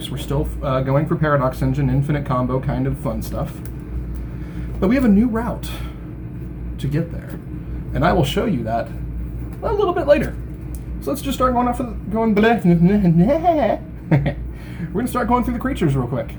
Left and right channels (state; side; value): identical; both; correlation 1.00